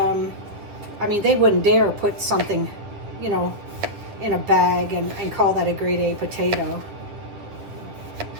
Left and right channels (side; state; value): left; late; 9.6 ms